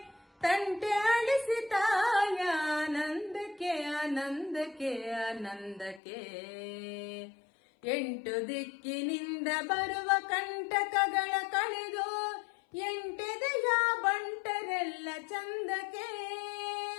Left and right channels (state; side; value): drops out; right; at 6.0 s